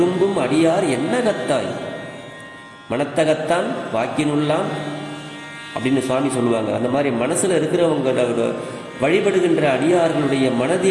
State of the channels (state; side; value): identical; both; correlation 1.00